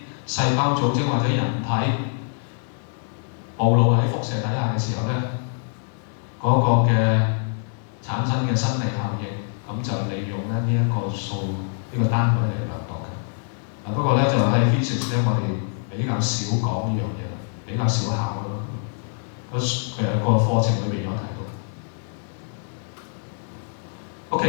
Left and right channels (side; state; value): right; silent; 62 dB below the other